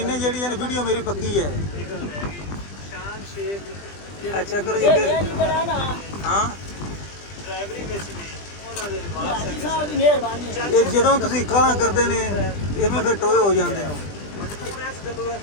ਜਿਹੜੀ ਇਹ ਵੀਡੀਓ ਮੇਰੀ ਪੱਕੀ ਹੈ। ਅੱਛਾ ਕਰੋ ਜੀ ਇਹ ਅੱਗੇ। ਨਹੀਂ ਕਰਾ ਨਾ ਹਾਂ ਡਰਾਈਵਰੀ ਵਿੱਚ ਵੀ ਉਹਨਾਂ ਦੇ ਹਾਜੀ ਸਾਹਿਬ ਦੀ ਮਿਹਰਬਾਨੀ ਹੈ। ਇਹ ਜਦੋਂ ਤੁਸੀਂ ਕਾਲਾਂ ਕਰਦੇ ਨੇ ਇਵੇਂ ਫਿਰ ਟੋਏ ਹੋ ਜਾਂਦੇ ਹੋ।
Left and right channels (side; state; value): right; late; 20 ms